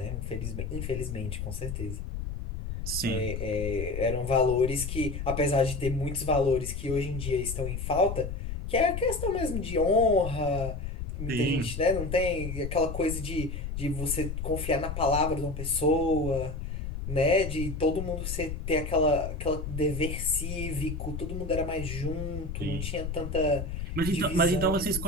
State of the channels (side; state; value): left; noise; rumble, 5 dB below the sound